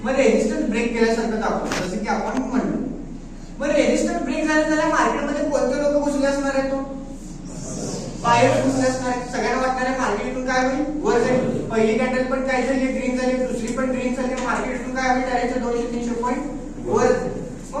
मग रेजिस्टन्स ब्रेक केल्यासारखं दाखवलं, जसं की आपण म्हणलो. मग रेजिस्टन्स ब्रेक झाल्या मार्केटमध्ये कोणते लोक घुसले असणार आहेत, बाहेर घुसले असणार आहेत. सगळ्यांना वाटणार आहे मार्केट इथून काय होईल, वर जाईल. पहिली कॅन्डल पण काय झाली, ग्रीन झाली, दुसरी पण ग्रीन झाली. मार्केट इथून काय होईल, डायरेक्ट 200-300 पॉईंट वर.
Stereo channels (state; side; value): identical; both; correlation 1.00